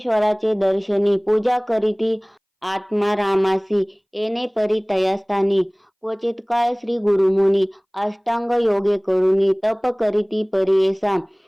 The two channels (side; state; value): both; identical; correlation 1.00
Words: दर्शनी पूजा करीती आत्मा रामासी येणे परी तयास्थानी क्वचित काळ श्री गुरुमुनी अष्टांग योगे करुणी तप करीती परियेसा